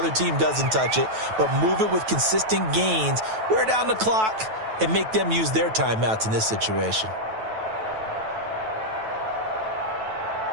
team doesn't touch it, but move it with consistent gains. Wear down the clock and make them use their timeouts in this situation.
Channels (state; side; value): late; left; 9.2 ms